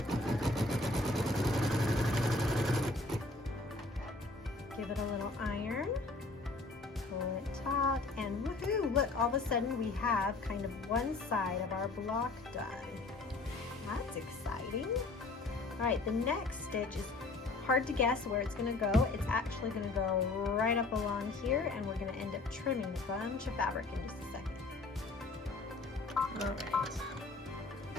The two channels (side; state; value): right; quieter; 3.3 dB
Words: Give it a little iron, pull it taut, and woohoo! Look, all of a sudden we have kind of one side of our block done. That's exciting. All right, the next stitch is hard to guess where it's going to go. It's actually going to go right up along here, and we're going to end up trimming a bunch of fabric in just a second. All right.